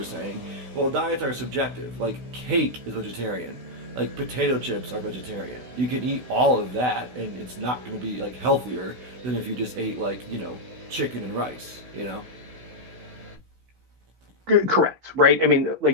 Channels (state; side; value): late; left; 16 ms